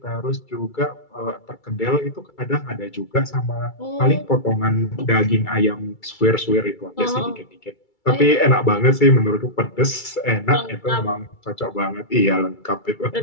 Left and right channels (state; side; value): late; right; 2.3 ms